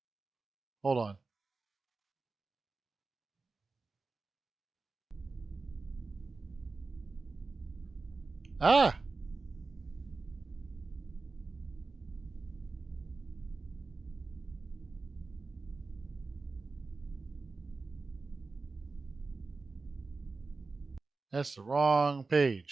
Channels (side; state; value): left; quieter; 3.9 dB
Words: Hold on. Ah, that's the wrong